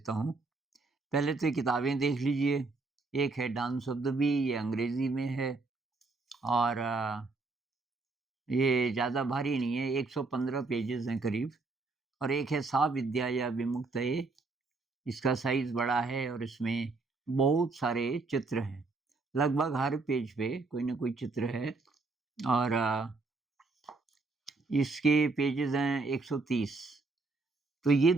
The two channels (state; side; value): quieter; left; 3.7 dB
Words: हूँ। पहले तो ये किताबें देख लीजिए। एक है डांस ऑफ द बी, ये अंग्रेज़ी में है और ये ज़्यादा भारी नहीं है, 115 पेजेज़ हैं करीब। और एक है सा विद्या या विमुक्तये, इसका साइज़ बड़ा है और इसमें बहुत सारे चित्र हैं। लगभग हर पेज पे कोई न कोई चित्र है और इसके पेजेज़ हैं 130। तो ये